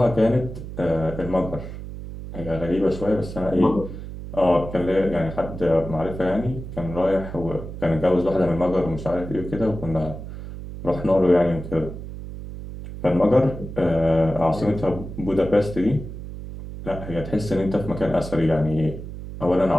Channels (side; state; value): right; noise; hum, 10 dB below the sound